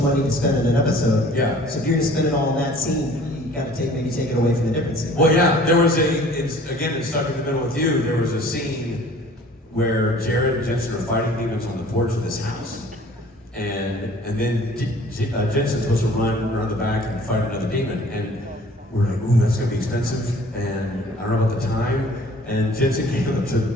money to spend in an episode. Yeah. So if you're going to spend it all in that scene, you got to maybe take it away from the different scene. Well, yeah, there was it's Stuck in the Middle with You, there was a scene where Jared and Jensen are fighting demons on the porch of this house. And then Jensen's supposed to run around the back and fight another demon. And we're like, ooh, that's gonna be expensive. And I don't know about the time. And Jensen came up to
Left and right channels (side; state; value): both; normal; correlation 0.51